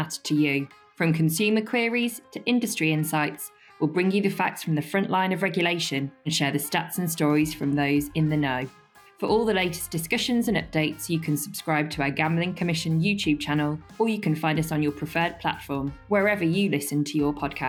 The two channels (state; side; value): identical; both; correlation 1.00